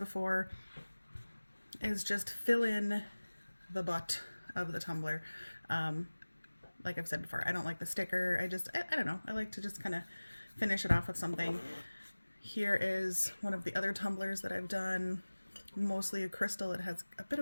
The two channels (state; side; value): inverted; both; correlation -1.00